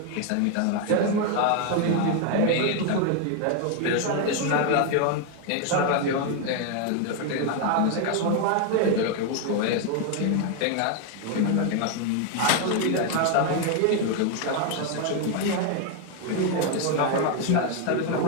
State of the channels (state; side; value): different; both; correlation 0.01